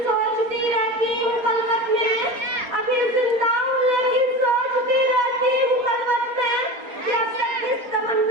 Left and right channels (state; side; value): late; left; 4.3 ms